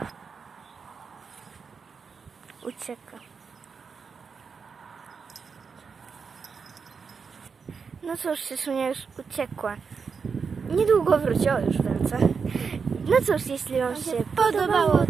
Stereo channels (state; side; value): quieter; left; 5.6 dB